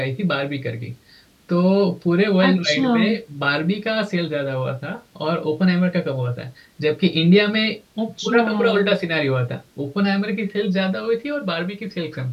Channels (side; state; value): both; identical; correlation 1.00